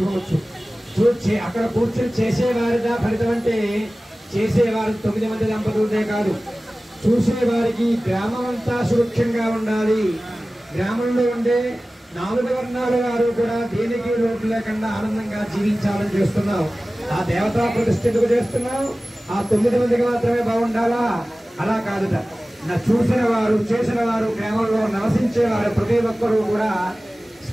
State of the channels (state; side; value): normal; both; correlation 0.97